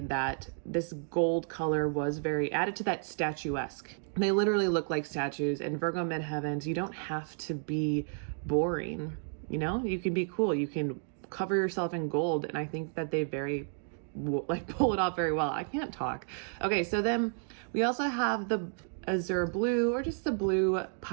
that this gold color was very added to that statuesque. They literally look like statues, and Virgo midheavens, you don't have to be boring, you know? You can be cool, you can cover yourself in gold, and I think that they pull it off very well. I can't talk. Okay, so then we also have the azure blue, or just the blue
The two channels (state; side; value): silent; left; 56 dB below the other